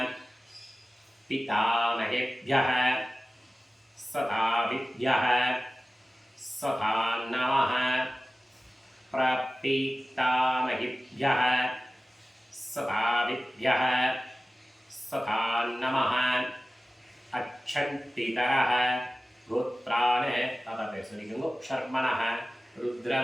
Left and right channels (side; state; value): both; normal; correlation 0.96